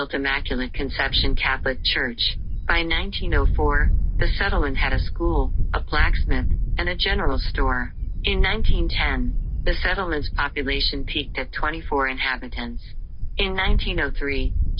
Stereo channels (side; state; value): both; identical; correlation 1.00